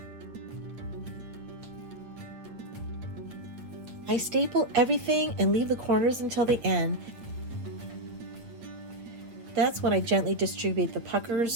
I staple everything and leave the corners until the end. That's when I gently distribute the puckers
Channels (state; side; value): late; left; 8.6 ms